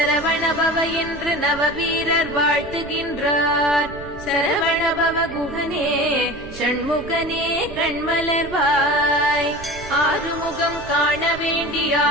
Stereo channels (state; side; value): noise; right; rumble, 15 dB below the sound